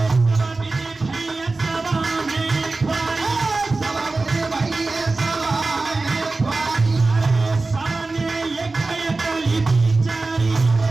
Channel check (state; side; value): quieter; left; 3.5 dB